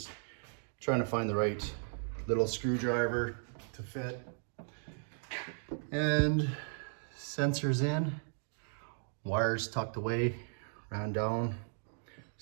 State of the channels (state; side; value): silent; left; digital silence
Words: trying to find the right little screwdriver to fit. And sensors in, wires tucked away, ran down,